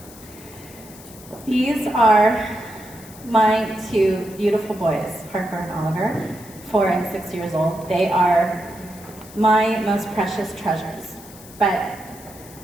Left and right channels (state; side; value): noise; left; hiss, 20 dB below the sound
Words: These are my two beautiful boys, Harper and Oliver, 4 and 6 years old. They are my most precious treasures, but